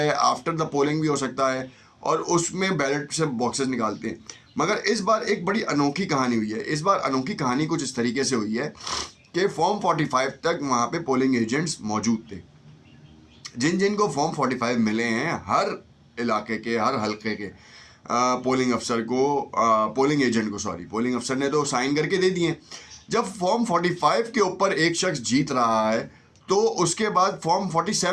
آفٹر دا پولنگ بھی ہو سکتا ہے، اور اس میں بیلٹ سے باکسز نکالتے ہیں. مگر اس بار ایک بڑی انوکھی کہانی ہوئی ہے. اس بار انوکھی کہانی کچھ اس طریقے سے ہوئی ہے کہ فارم 45 تک وہاں پہ پولنگ ایجنٹس موجود تھے. جن کو فارم 45 ملے ہیں، ہر علاقے کے، ہر حلقے کے پولنگ افسر کو، پولنگ ایجنٹ کو، پولنگ افسر نے تو سائن کر کے دے دیے. جب فارم 45 کے اوپر ایک شخص جیت رہا ہے تو اس کے بعد فارم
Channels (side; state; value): both; identical; correlation 1.00